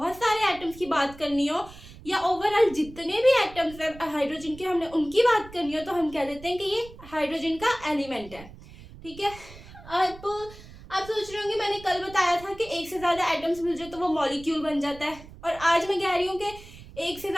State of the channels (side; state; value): right; noise; rumble, 18 dB below the sound